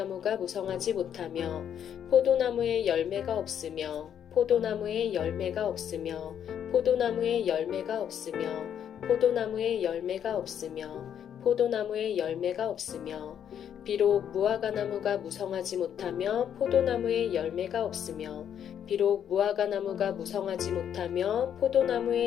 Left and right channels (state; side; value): quieter; right; 9.2 dB